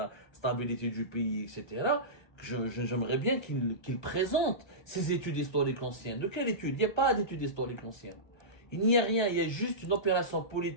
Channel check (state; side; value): late; right; 1.2 ms